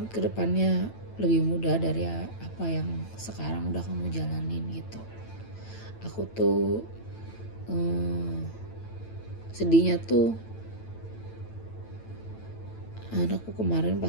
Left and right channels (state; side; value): late; right; 9.0 ms